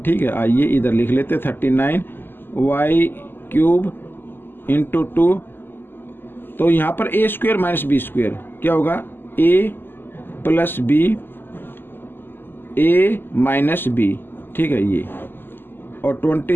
है। आइए इधर लिख लेते 39y क्यूब इंटू 2, तो यहाँ पर a square minus B square क्या होगा, a plus B, a minus B, ठीक है ये, और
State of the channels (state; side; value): late; right; 0.097 ms